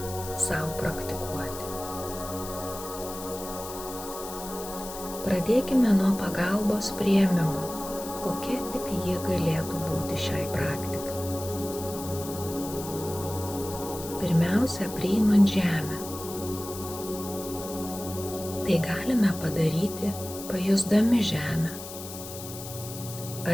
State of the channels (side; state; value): left; noise; hiss, 11 dB below the sound